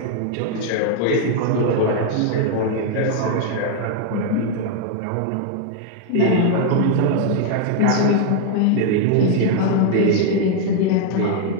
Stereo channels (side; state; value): both; different; correlation 0.00